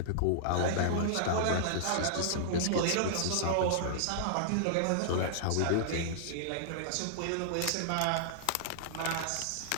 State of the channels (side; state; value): both; different; correlation -0.01